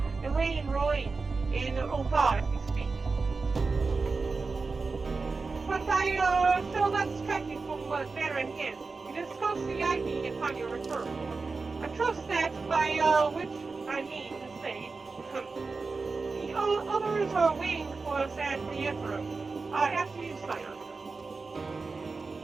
Elaine Roy in Oda as we speak. But I shall not distract you from the matter at hand. We discussed the ivy upon your return. I trust that, by which I mean to say, the others are waiting for us at the Emperor, after you sign up.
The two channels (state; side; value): quieter; left; 4.2 dB